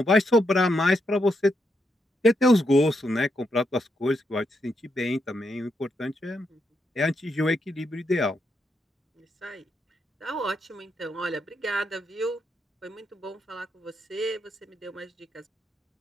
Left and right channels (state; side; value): normal; both; correlation 0.81